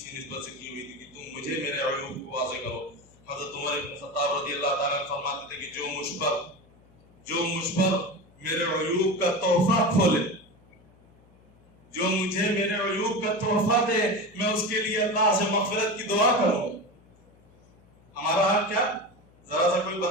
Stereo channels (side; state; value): left; noise; hum, 29 dB below the sound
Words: نسبت سے کی ہوئی تھی کہ تم مجھے میرے عیوب کو واضح کرو. حضرت عمر بن خطاب رضی اللہ تعالیٰ فرماتے تھے کہ جو مجھ پر میرے عیوب کا تحفہ کھولے، جو مجھے میرے عیوب کا تحفہ دے، میں اس کے لیے اللہ سے مغفرت کی دعا کروں گا. ہمارا حال کیا؟ ذرا سا کوئی